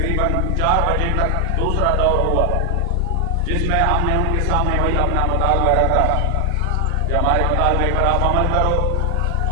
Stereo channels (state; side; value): different; both; correlation 0.00